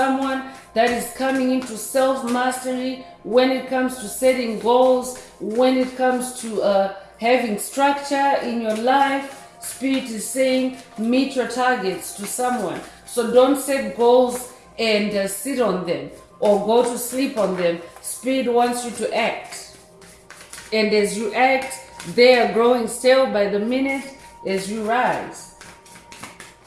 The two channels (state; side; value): identical; both; correlation 1.00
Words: that is coming into self-mastery when it comes to setting goals, when it comes to having structure in your life. Spirit is saying meet your targets to someone. So don't set goals and sit on them or go to sleep on them. Spirit wants you to act. And as you act, they are growing stale by the minute as you rise.